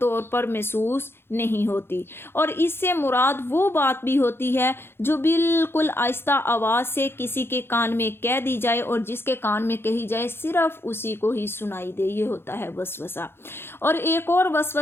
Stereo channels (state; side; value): late; right; 0.11 ms